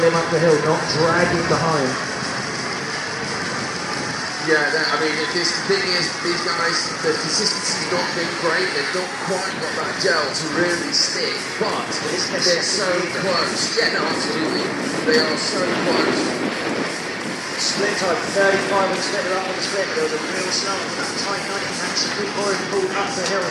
him up the hill, not dragging behind. Yeah, I mean, the thing is, these guys, the consistency's not been great. They've not quite got that gel to really stick, but they're so close. Yeah, no, absolutely. They are so close. Split time, 35 on the split, they're up on the split. There was a real slow on that tight 90 and Supreme Boyd pulled up the hill.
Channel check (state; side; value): identical; both; correlation 1.00